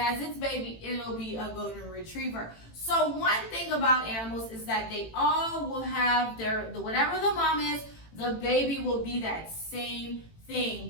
its baby, it'll be a golden retriever. So one thing about animals is that they all will have whatever the mom is, the baby will be that same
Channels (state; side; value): late; right; 18 ms